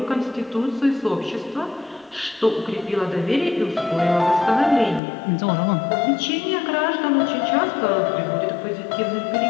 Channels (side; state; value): right; drops out; at 5.0 s